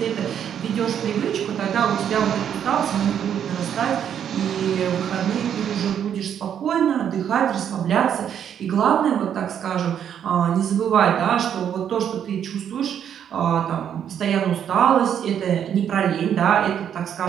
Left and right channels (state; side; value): quieter; left; 9.0 dB